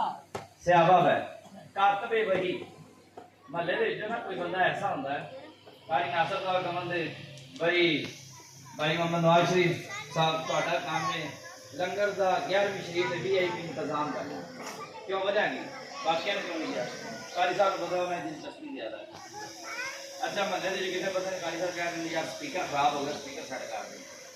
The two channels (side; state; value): both; identical; correlation 1.00